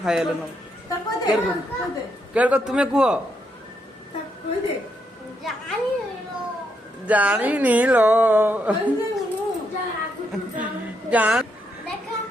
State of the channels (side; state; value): both; normal; correlation 0.78